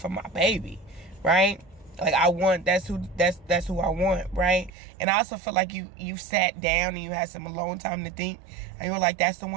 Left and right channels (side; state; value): left; drops out; at 4.7 s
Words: my baby, right? Like I want, that's who I want, right? And I also feel like you sat down and you had some alone time to think, and you were like, that's the